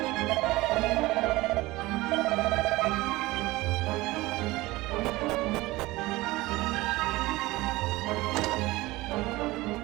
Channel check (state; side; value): quieter; left; 19.8 dB